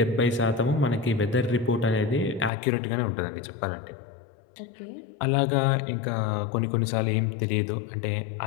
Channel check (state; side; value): drops out; right; at 2.5 s